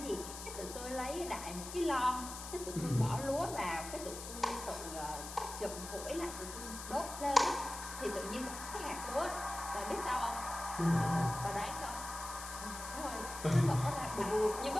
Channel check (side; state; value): left; noise; hiss, 10 dB below the sound